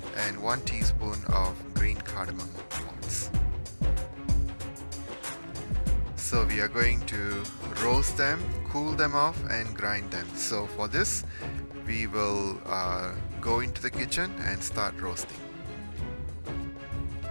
and 1 teaspoon of green cardamom pods. So we are going to roast them, cool them off, and grind them. So for this, we will go into the kitchen and start roasting.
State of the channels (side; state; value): both; inverted; correlation -1.00